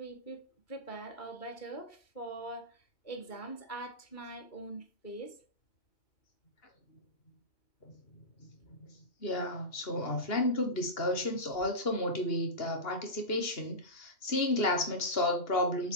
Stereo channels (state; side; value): late; right; 2.8 ms